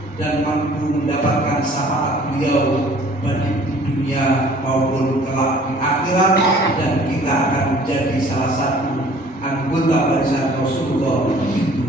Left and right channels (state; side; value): normal; both; correlation 0.53